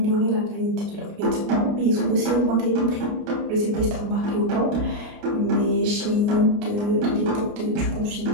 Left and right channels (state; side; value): late; left; 29 ms